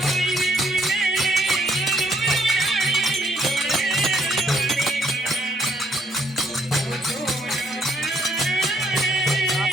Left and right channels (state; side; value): normal; both; correlation 0.67